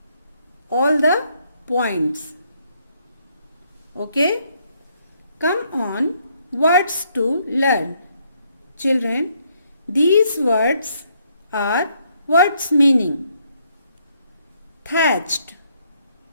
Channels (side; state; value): both; inverted; correlation -0.71